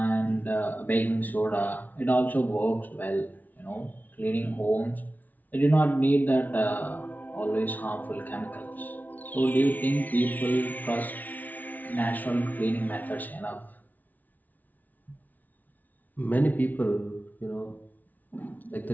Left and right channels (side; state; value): right; late; 0.079 ms